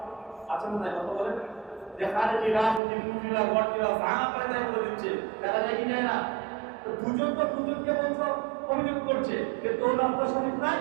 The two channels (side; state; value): left; drops out; at 2.8 s